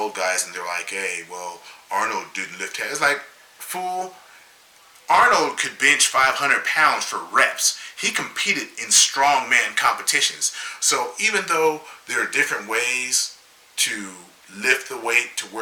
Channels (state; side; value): identical; both; correlation 1.00